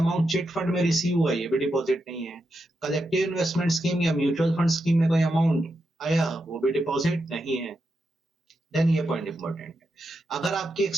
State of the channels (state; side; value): normal; both; correlation 0.85